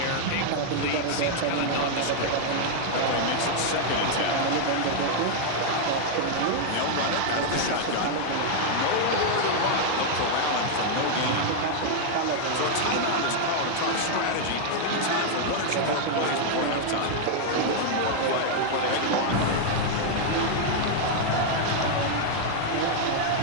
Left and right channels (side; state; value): both; different; correlation 0.00